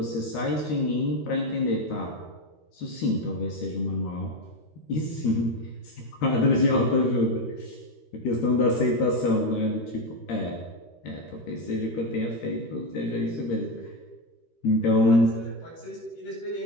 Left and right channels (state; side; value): late; right; 13 ms